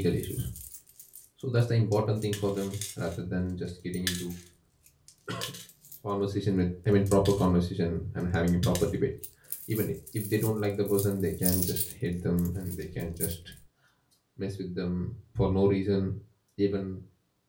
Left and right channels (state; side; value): identical; both; correlation 1.00